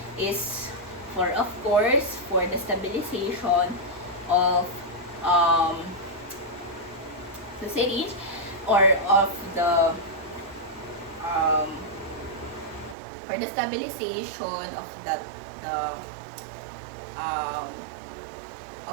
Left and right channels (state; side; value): drops out; left; at 13.0 s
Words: is for, of course, for the stabilization of the syringe, or of the for the stabilization of that